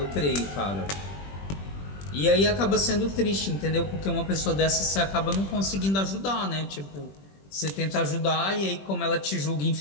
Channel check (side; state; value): right; late; 21 ms